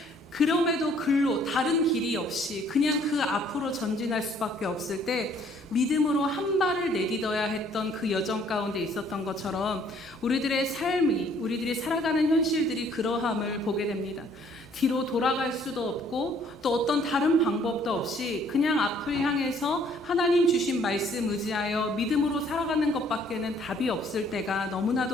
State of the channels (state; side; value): normal; both; correlation 0.61